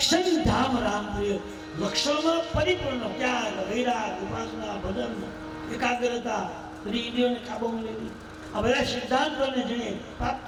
ધામ રામ પ્રિય. લક્ષણમાં પરિપૂર્ણ ત્યાગ, વૈરાગ, ઉપાસના, ભજન, એકાગ્રતા, ઇન્દ્રિયોને કાબૂમાં લેવી, આ બધા સિદ્ધાંતોને જેને પ્રાપ્ત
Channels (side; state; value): both; identical; correlation 1.00